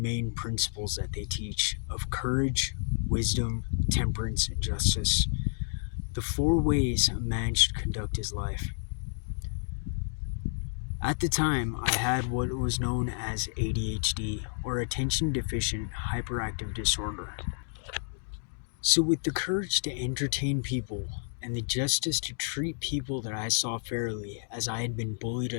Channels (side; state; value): right; silent; digital silence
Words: principles that they teach of courage, wisdom, temperance, and justice. The 4 ways a man should conduct his life. At the time, I had what was known as ADHD, or Attention Deficient Hyperactive Disorder. So with the courage to entertain people and the justice to treat people that I saw fairly, as I had been bullied